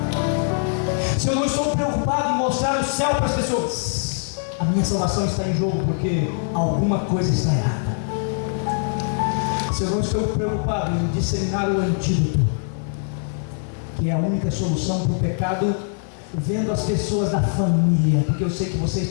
Se eu não estou preocupado em mostrar o céu para as pessoas, a minha salvação está em jogo, porque alguma coisa está errada. Se eu não estou preocupado em disseminar o antídoto, que é a única solução para o pecado, vendo as pessoas da família, porque eu sei que vocês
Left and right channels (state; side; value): silent; right; 64 dB below the other